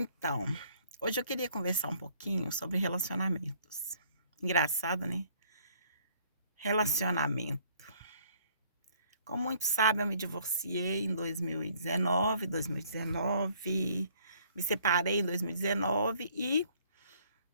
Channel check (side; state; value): both; inverted; correlation -0.61